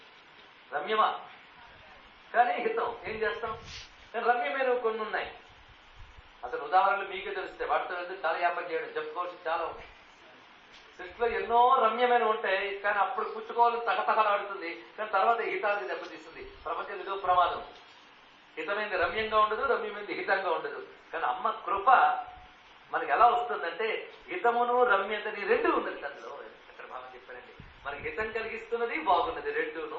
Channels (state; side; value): identical; both; correlation 1.00